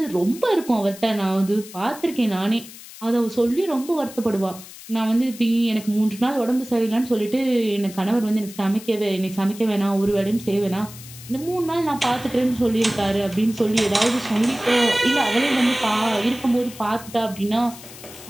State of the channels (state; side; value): noise; left; hiss, 16 dB below the sound